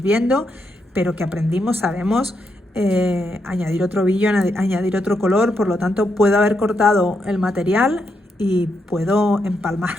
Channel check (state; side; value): normal; both; correlation 0.81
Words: viendo, pero que aprendimos, sabemos añadir otro brillo, añadir otro color, por lo tanto puedo haber cortado el material y puedo